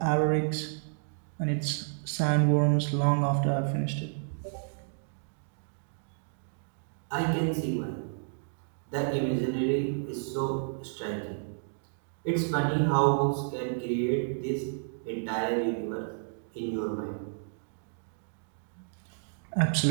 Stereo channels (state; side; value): silent; left; digital silence